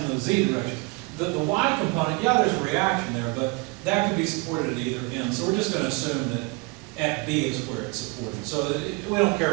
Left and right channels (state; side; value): quieter; left; 27.1 dB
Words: the z direction, the y component, yeah, there's a reaction there, but that could be supported at either end. So we're just going to assume that at B is where it's supported. So we don't care